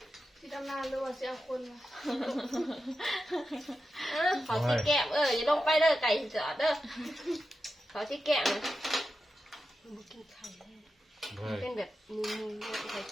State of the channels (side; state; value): both; normal; correlation 0.90